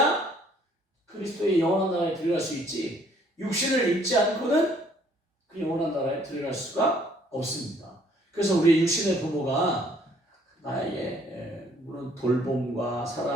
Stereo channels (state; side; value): normal; both; correlation 0.62